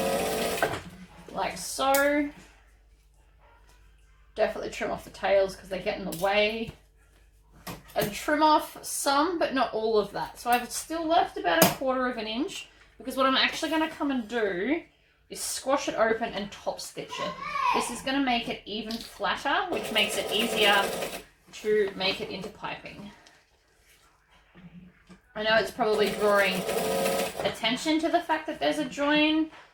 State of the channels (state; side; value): identical; both; correlation 1.00